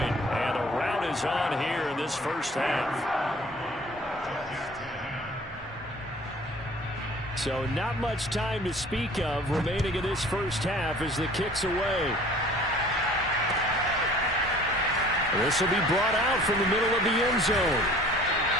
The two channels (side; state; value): both; normal; correlation 0.50